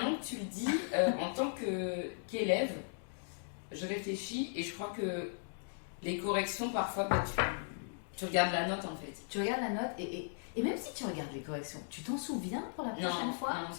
que tu le dis, en tant qu'élève, je réfléchis et je crois que les corrections, parfois, tu regardes la note en fait. Tu regardes la note et même si tu regardes les corrections, tu t'en souviens pour la prochaine fois? Non, on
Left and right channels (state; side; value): silent; right; digital silence